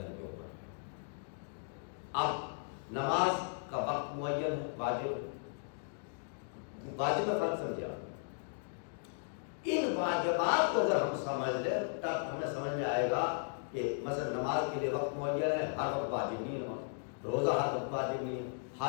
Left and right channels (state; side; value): silent; right; digital silence